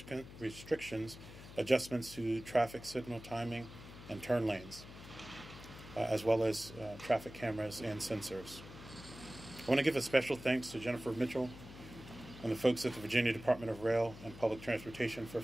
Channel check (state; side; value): noise; left; hum, 15 dB below the sound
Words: restrictions, adjustments to traffic signal timing and turn lanes, as well as traffic cameras and sensors. I want to give a special thanks to Jennifer Mitchell and the folks at the Virginia Department of Rail and Public Transportation for